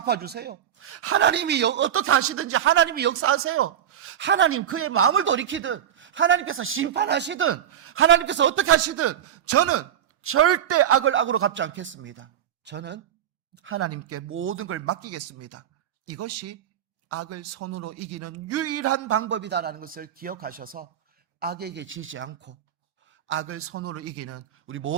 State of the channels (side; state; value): left; quieter; 9.8 dB